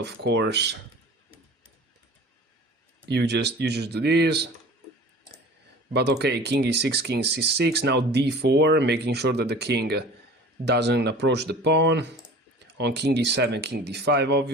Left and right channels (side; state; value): both; normal; correlation 0.42